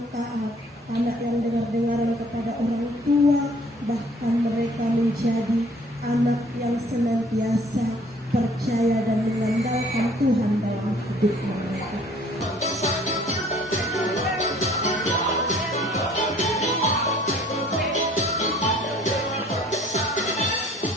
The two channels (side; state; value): both; normal; correlation 0.55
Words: taat, anak yang dengar-dengaran kepada orang tua, bahkan mereka menjadi anak yang senantiasa percaya dan mengandalkan Tuhan dalam hidup mereka.